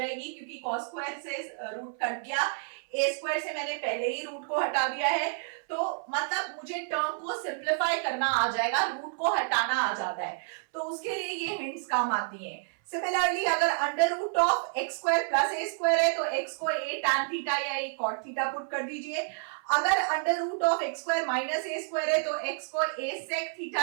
क्योंकि कॉस स्क्वायर से रूट कट गया, ए स्क्वायर से मैंने पहले ही रूट को हटा दिया है, तो मतलब मुझे टर्म को सिंप्लीफाई करना आ जाएगा, रूट को हटाना आ जाता है, तो उसके लिए ये हिंट्स काम आती हैं। सिमिलरली अगर under root of x square plus a square है तो एक्स को ए टैन थीटा या ए कॉट थीटा पुट कर दीजिए। अगर under root of x square minus a square है तो एक्स को ए सेक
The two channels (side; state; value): left; silent; 58 dB below the other